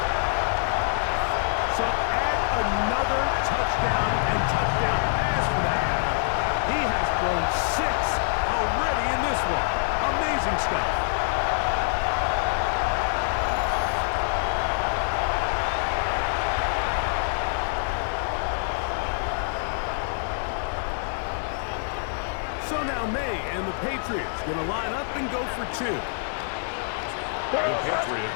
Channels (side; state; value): right; silent; digital silence